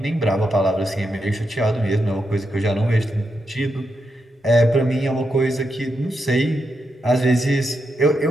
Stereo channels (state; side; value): normal; both; correlation 0.84